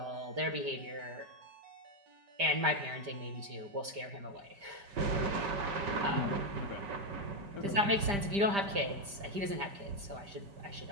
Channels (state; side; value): late; left; 5.0 ms